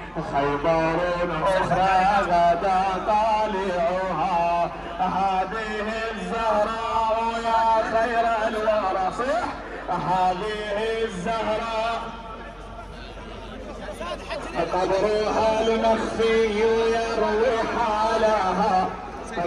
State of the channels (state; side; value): identical; both; correlation 1.00